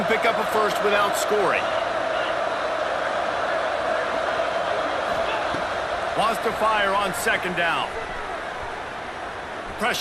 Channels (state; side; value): identical; both; correlation 1.00